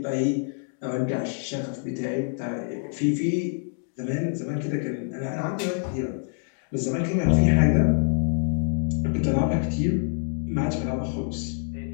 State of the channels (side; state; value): right; silent; 58 dB below the other